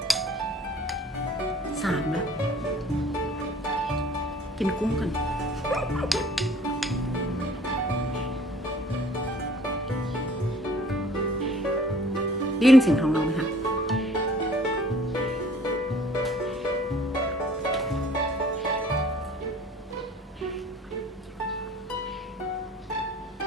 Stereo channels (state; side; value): normal; both; correlation 0.53